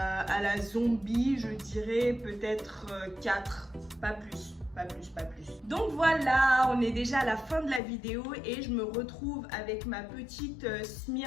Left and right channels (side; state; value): right; drops out; at 7.8 s